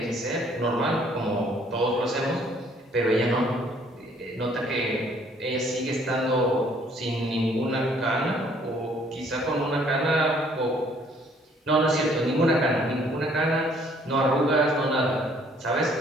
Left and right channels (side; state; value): both; normal; correlation 0.61